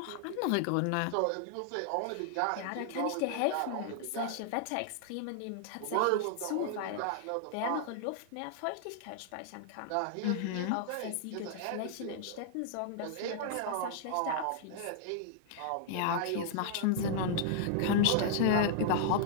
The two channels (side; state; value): both; different; correlation -0.01